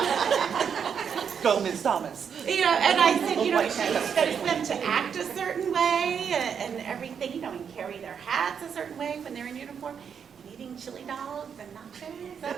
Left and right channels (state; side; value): quieter; left; 7.2 dB